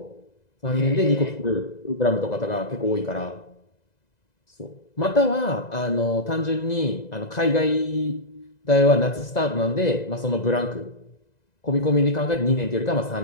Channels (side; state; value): right; late; 2.0 ms